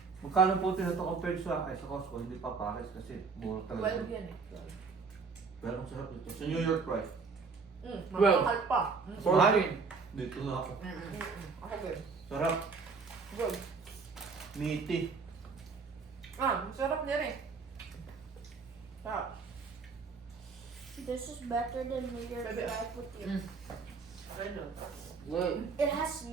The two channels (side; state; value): left; quieter; 4.8 dB